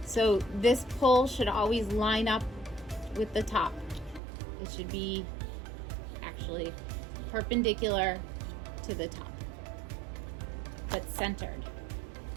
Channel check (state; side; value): drops out; left; at 4.2 s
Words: So this pull should always line up with the top. It should be actually perpendicular to the top, but centered.